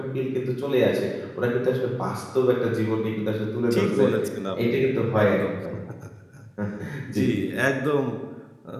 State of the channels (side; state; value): both; identical; correlation 1.00